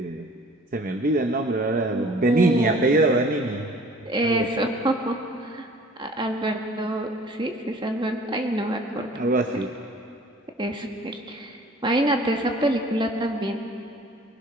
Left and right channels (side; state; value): both; normal; correlation 0.50